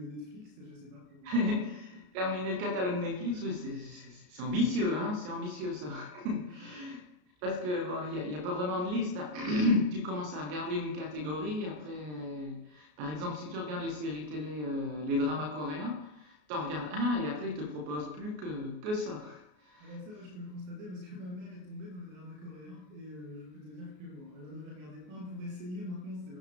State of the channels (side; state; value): left; late; 33 ms